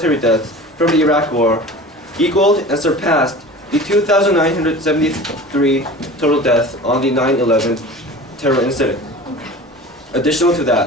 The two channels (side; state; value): both; normal; correlation 0.38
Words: deaths from the Iraq War equaled and surpassed the 2,973 total deaths on the 9/11 terror incident. Additional to